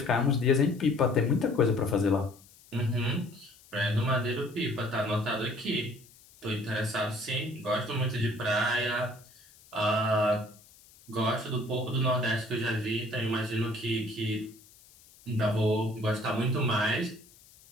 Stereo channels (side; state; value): left; noise; hiss, 25 dB below the sound